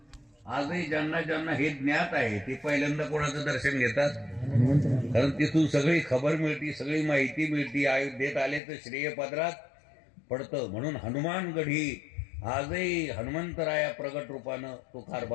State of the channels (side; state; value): right; drops out; at 8.6 s